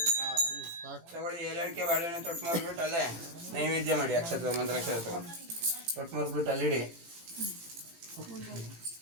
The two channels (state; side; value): late; left; 18 ms